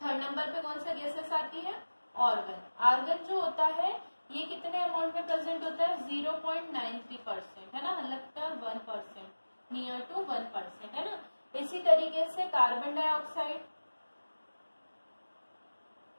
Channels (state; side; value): inverted; both; correlation -1.00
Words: थर्ड नंबर पे कौन सा गैसेस आती है? ऑर्गन। आर्गन जो होता है ये कितने अमाउंट में प्रेजेंट होता है? 0.93%, है ना, मतलब 1%, नियर टू 1%, है ना। इसी तरीके से कार्बन डाइऑक्साइड,